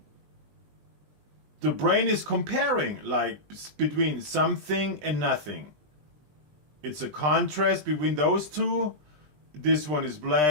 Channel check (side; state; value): left; late; 20 ms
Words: the brain is comparing, like, between something and nothing. It's a contrast between those two. This one is